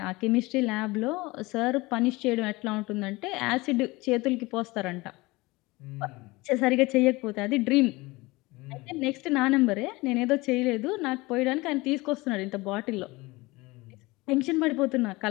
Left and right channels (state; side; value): quieter; right; 22.2 dB